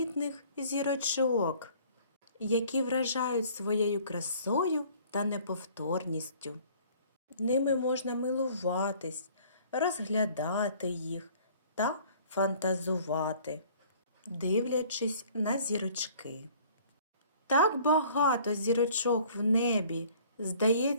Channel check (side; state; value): both; inverted; correlation -0.53